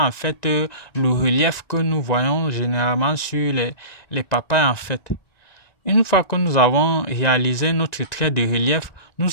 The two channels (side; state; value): right; late; 1.9 ms